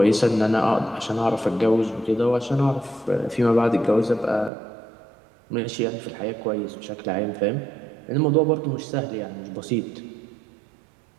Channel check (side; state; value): left; drops out; at 4.5 s